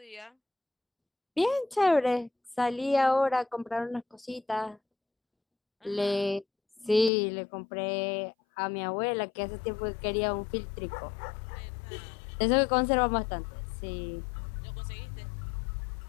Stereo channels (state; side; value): drops out; right; at 7.1 s